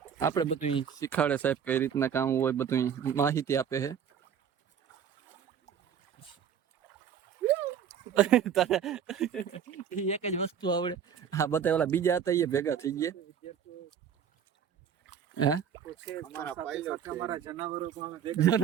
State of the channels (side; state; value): left; quieter; 8.2 dB